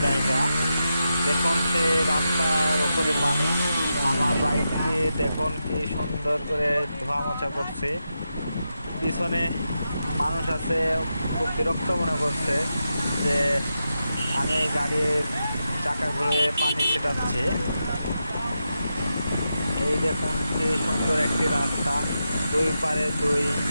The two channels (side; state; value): both; inverted; correlation -0.88